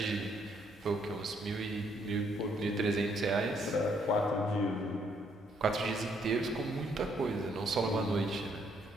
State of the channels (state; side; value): normal; both; correlation 0.70